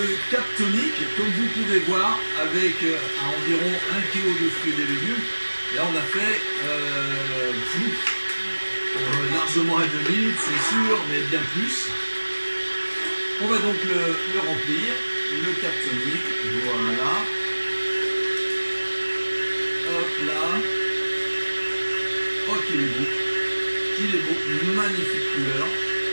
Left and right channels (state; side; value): inverted; both; correlation -1.00